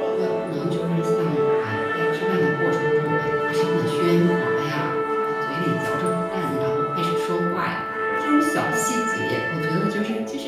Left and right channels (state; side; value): identical; both; correlation 1.00